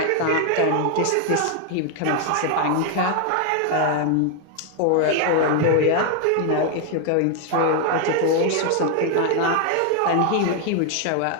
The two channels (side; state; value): both; different; correlation 0.00